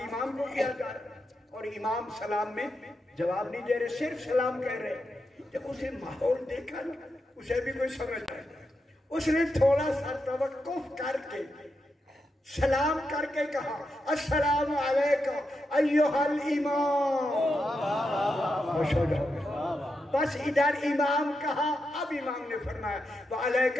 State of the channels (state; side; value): normal; both; correlation 0.86